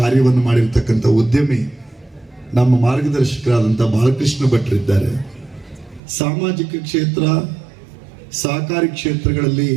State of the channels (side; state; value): left; drops out; at 6.0 s